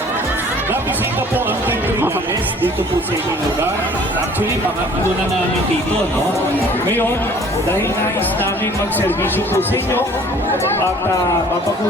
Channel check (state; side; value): normal; both; correlation 0.52